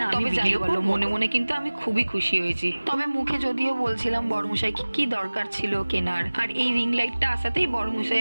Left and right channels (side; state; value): both; inverted; correlation -1.00